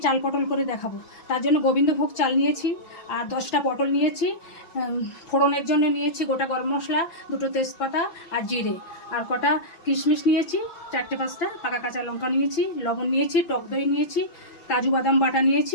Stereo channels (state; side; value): late; right; 5.9 ms